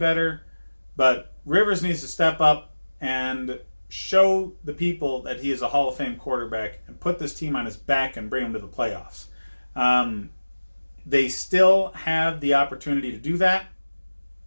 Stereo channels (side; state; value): both; inverted; correlation -1.00